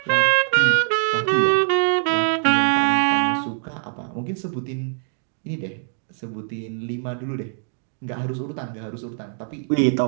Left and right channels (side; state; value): left; silent; 64 dB below the other